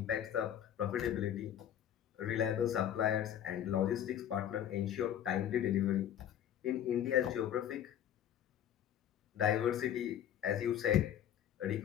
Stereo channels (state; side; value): quieter; right; 10.4 dB